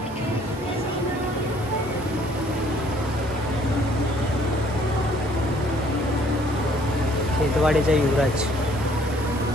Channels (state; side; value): normal; both; correlation 0.61